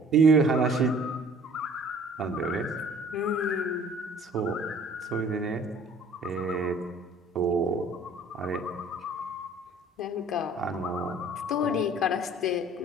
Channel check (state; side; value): normal; both; correlation 0.52